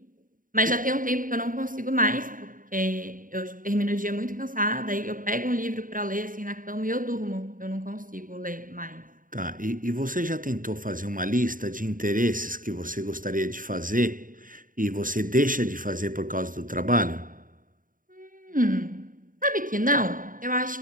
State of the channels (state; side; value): late; left; 0.39 ms